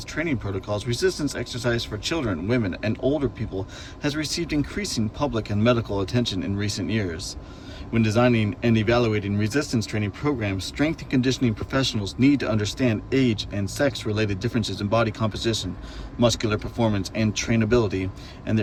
training protocols, resistance exercise for children, women, and older people has received increasing public and medical attention in recent years. When designing and evaluating resistance training programs, strength and conditioning professionals need to understand age and sex-related differences in body composition, muscular performance, and trainability, and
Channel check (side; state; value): both; identical; correlation 1.00